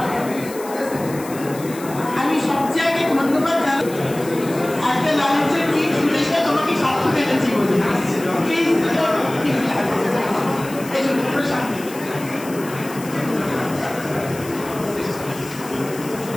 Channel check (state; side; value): noise; left; hiss, 16 dB below the sound